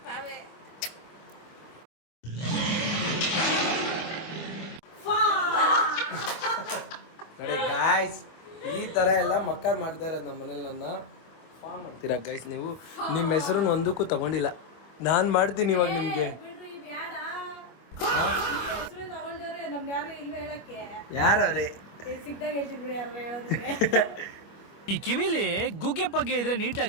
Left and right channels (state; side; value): late; right; 25 ms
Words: ನೋಡಿ ಗಾಯ್ಸ್, ಈ ತರ ಎಲ್ಲ ಮಕ್ಕಳು ಮಾಡ್ತಾ ಇರೋದು ನಮ್ಮ ಮನೇಲಿ. ನನ್ನ ಫಾರ್ಮ್ ಮಾಡ್ತೀರಾ ಗೈಸ್ ನೀವು? ನಿಮ್ಮ ಹೆಸರು ಒಂದಕ್ಕೂ ತಗೊಂಡಿಲ್ಲ, ನಾನು ಮಾಡ್ತೀನಿ ಇವಾಗ ನಿಮ್ಗೆ. ಯಾರವ್ರೆ? ಈ ಕಿವಿಲಿ ಗುಗ್ಗೆ ಪಗ್ಗೆ ಇದ್ರೆ